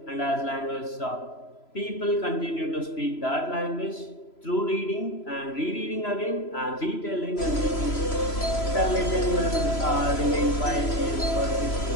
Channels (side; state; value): right; late; 3.0 ms